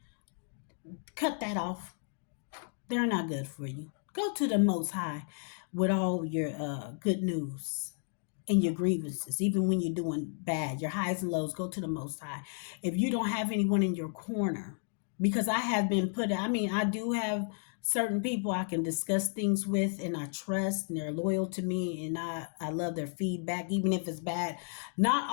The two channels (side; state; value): right; silent; 56 dB below the other